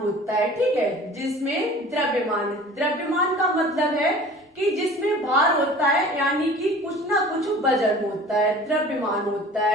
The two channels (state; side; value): normal; both; correlation 0.44